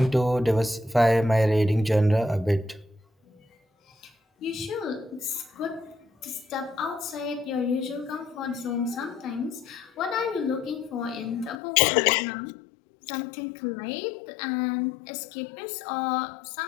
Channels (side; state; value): right; drops out; at 11.6 s